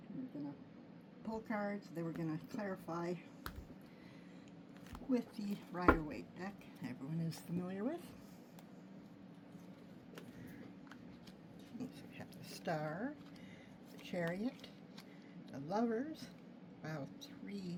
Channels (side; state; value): both; identical; correlation 1.00